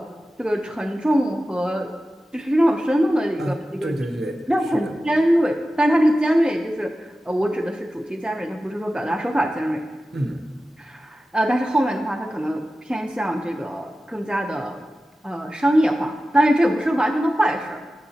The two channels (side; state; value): both; normal; correlation 0.94